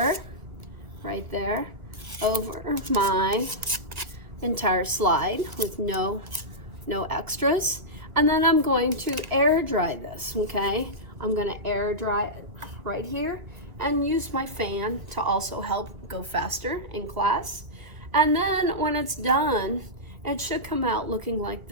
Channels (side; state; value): left; late; 1.3 ms